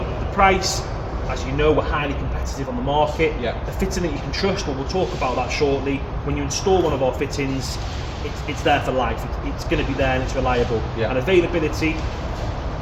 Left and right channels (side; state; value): both; identical; correlation 1.00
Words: the price, as you know, we're highly competitive on the market. Yeah. The fitting that you can trust, well, we'll talk about that shortly. When you install one of our fittings, it's there for life. It's going to be there and it's reliable. Yeah. And availability,